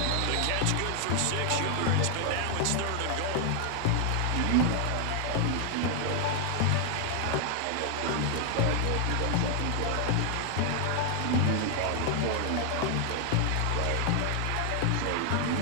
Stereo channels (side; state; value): both; different; correlation 0.00